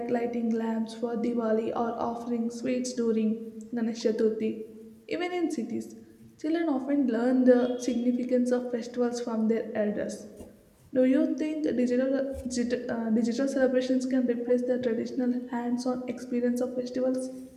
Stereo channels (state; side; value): identical; both; correlation 1.00